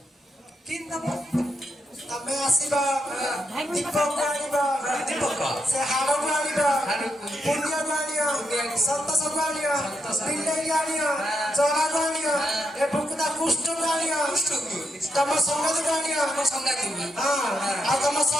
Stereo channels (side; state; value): both; normal; correlation 0.81